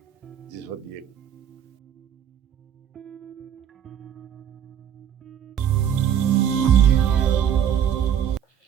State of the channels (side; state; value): left; quieter; 9.2 dB